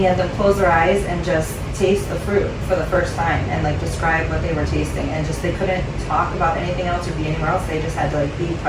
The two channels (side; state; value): both; identical; correlation 1.00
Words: had them close their eyes and just taste the fruit for the first time and like describe what they were tasting, and just they couldn't talk about anything else or be anywhere else. They just had to like be